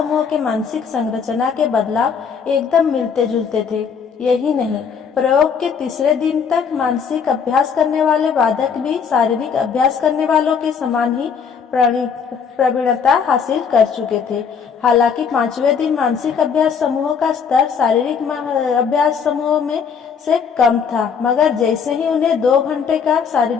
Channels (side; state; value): right; quieter; 6.4 dB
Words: के मानसिक संरचना के बदलाव एकदम मिलते जुलते थे। यही नहीं, प्रयोग के तीसरे दिन तक मानसिक अभ्यास करने वाले बाधक भी शारीरिक अभ्यास करने वालों के समान ही प्रवीणता हासिल कर चुके थे। हालांकि पांचवें दिन मानसिक अभ्यास समूह का स्तर शारीरिक अभ्यास समूह में से कम था, मगर जैसे ही उन्हें 2 घंटे का